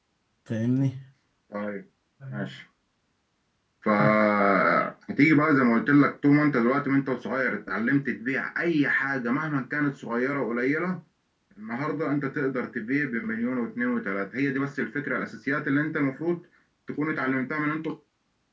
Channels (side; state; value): both; identical; correlation 1.00